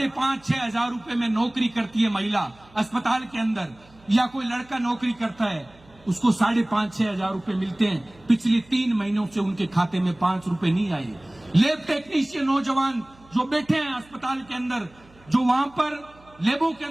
हजार रुपए में नौकरी करती है महिला अस्पताल के अंदर, या कोई लड़का नौकरी करता है, उसको 5,500-6 हजार रुपए मिलते हैं। पिछले 3 महीनों से उनके खाते में 5 रुपए नहीं आए। लैब टेक्नीशियन नौजवान जो बैठे हैं अस्पताल के अंदर, जो वहां पर लैबों के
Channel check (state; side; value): noise; right; hum, 27 dB below the sound